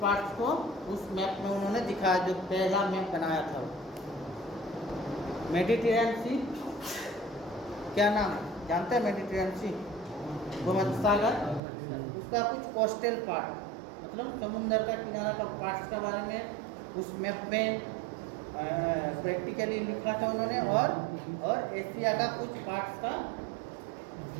पार्ट्स को उस मैप में उन्होंने दिखाया, जो पहला मैप बनाया था। मेडिटेरेनियन सी क्या नाम है? जानते हैं मेडिटेरेनियन सी? भूमध्य सागर, उसका कुछ कोस्टल पार्ट मतलब समुद्र का किनारा का पार्ट्स के बारे में उस मैप में प्रैक्टिकली लिखा था उन्होंने, और एशिया का कुछ पार्ट्स का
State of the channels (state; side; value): drops out; left; at 11.6 s